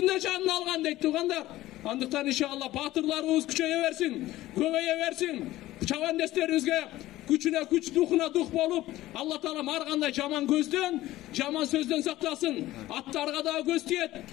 canını algan deyip tuğandar. Andıktan inşallah batırlarımız küçeye versin, köveye versin. Çavan desterimizge güçüne güç, duhuna duh bolup Allah Taala'm arganda jaman gözden, jaman sözden saklasın. Attarga da göz tiyet,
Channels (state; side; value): quieter; right; 16.1 dB